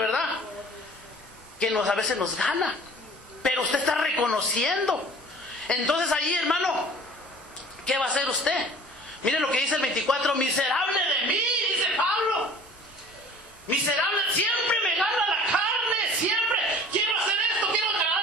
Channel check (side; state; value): both; normal; correlation 0.46